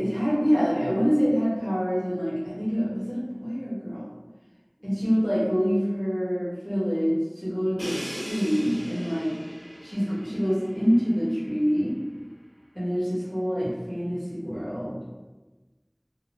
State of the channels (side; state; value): both; identical; correlation 1.00